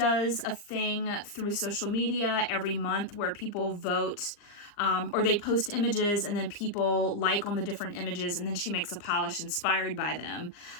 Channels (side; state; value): right; late; 39 ms